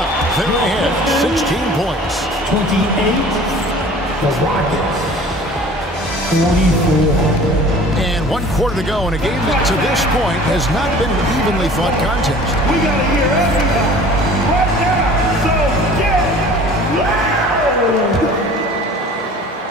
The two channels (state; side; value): normal; both; correlation 0.46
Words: They're ahead, 16 points. 28, the Rockets, 24. And 1 quarter to go in a game that to this point has not been an evenly fought contest. We got to hear everybody right now, so get